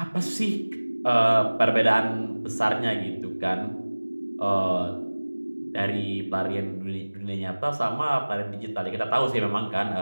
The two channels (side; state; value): both; inverted; correlation -1.00